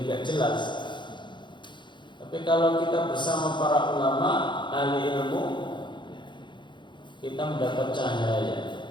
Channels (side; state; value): right; late; 0.23 ms